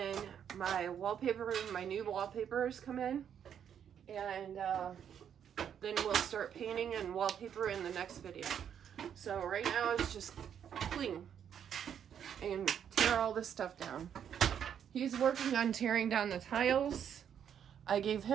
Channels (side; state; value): left; quieter; 8.7 dB